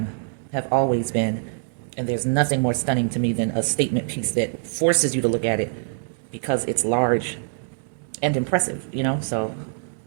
have always been, and there's nothing more stunning to me than a statement piece that forces you to look at it because it's large and impressive, so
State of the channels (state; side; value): silent; left; digital silence